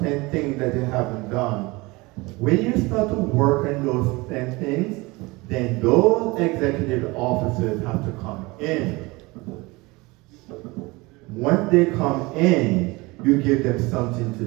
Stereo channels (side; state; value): left; quieter; 23.5 dB